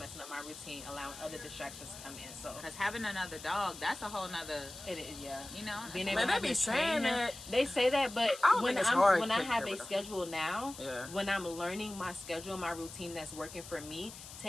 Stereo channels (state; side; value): noise; left; hiss, 14 dB below the sound